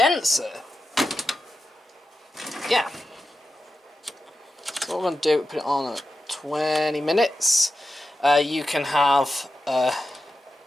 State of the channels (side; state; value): both; normal; correlation 0.91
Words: Yeah. So what we're going to do, put it on at 20 minutes. You can have, where